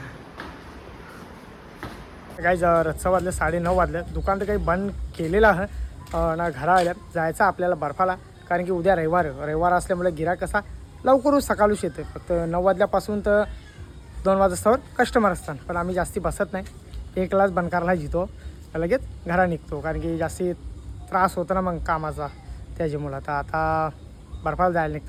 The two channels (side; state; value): both; identical; correlation 1.00